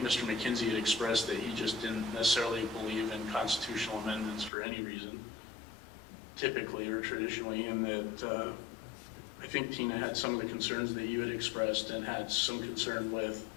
Mr. McKenzie had expressed that he just didn't necessarily believe in constitutional amendments for any reason, typically or traditionally, and that I think Tina had some of the concerns that you had expressed and had some concern with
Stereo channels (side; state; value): right; drops out; at 4.5 s